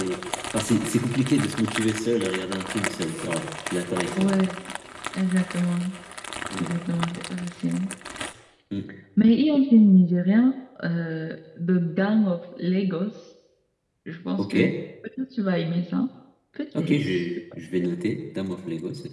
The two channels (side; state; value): both; identical; correlation 1.00